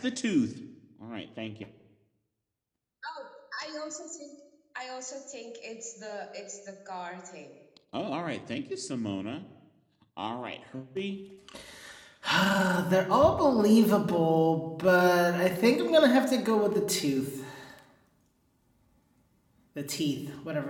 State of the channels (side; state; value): both; identical; correlation 1.00